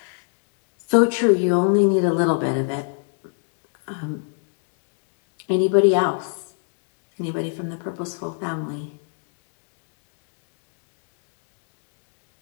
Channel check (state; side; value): silent; right; 56 dB below the other